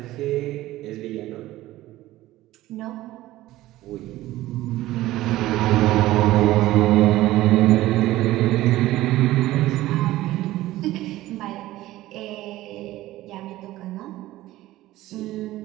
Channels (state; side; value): quieter; left; 16.2 dB